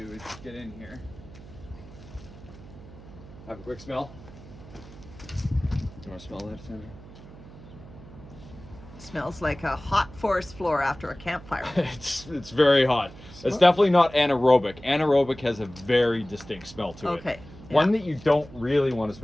is get in here, have a quick smell. You want to smell that, Sandra? Smells like a hot forest floor after a campfire. It's very hot. It's definitely not anaerobic. Anaerobic has a very distinct smell to it. Okay. One that you don't really want to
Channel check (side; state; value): right; noise; hum, 18 dB below the sound